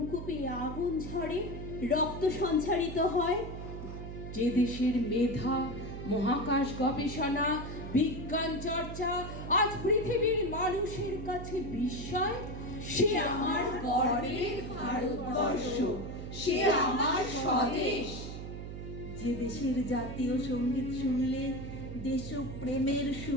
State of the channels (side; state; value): right; noise; hum, 8 dB below the sound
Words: আগুন ঝরে, রক্ত সঞ্চারিত হয়। যে দেশের মেধা, মহাকাশ গবেষণা, বিজ্ঞান চর্চা আজ পৃথিবীর মানুষের কাছে বিস্ময়, সে আমার গর্বের ভারতবর্ষ, সে আমার স্বদেশ। যে দেশের জাতীয় সঙ্গীত শুনলে দেশপ্রেমের